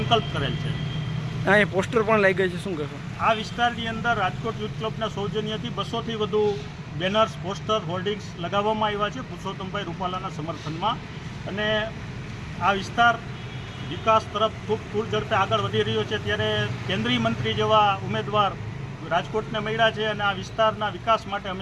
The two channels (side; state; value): both; identical; correlation 1.00